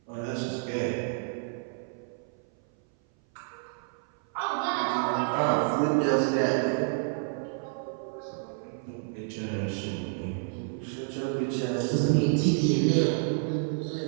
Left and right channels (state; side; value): silent; left; 57 dB below the other